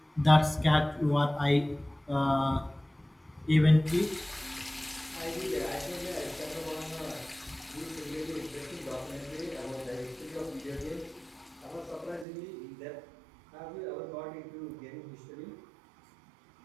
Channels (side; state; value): left; drops out; at 12.2 s